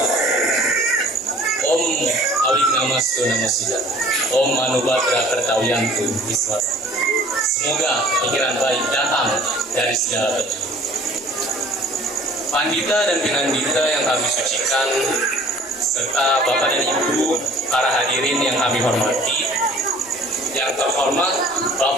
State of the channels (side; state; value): both; normal; correlation 0.50